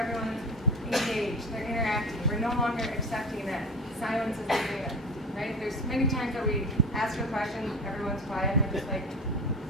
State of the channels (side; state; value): both; normal; correlation 0.30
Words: engaged. They're interacting. We're no longer accepting that silence is agreement. Right? There's many times that we ask a question, everyone's quiet, and we're just like,